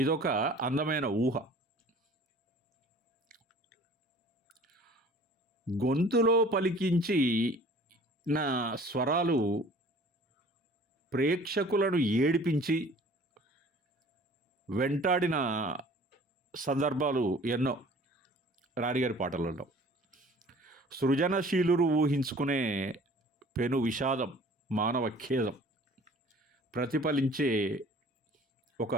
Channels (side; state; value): both; normal; correlation 0.49